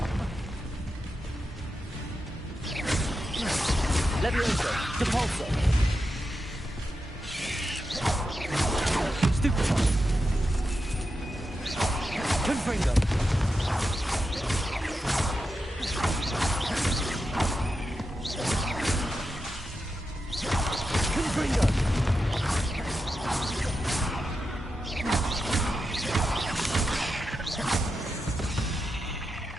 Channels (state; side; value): normal; both; correlation 0.88